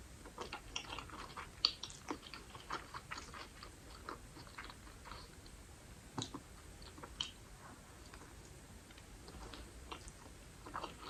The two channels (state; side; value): identical; both; correlation 1.00